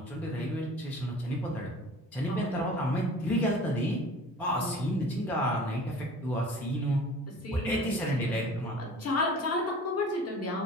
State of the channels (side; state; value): both; normal; correlation 0.44